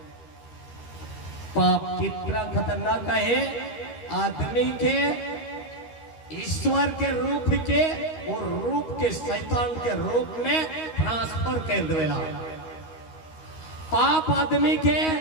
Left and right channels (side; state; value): right; late; 13 ms